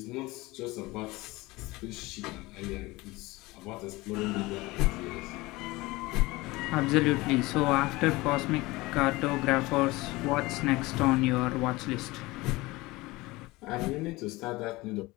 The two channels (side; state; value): right; quieter; 21.2 dB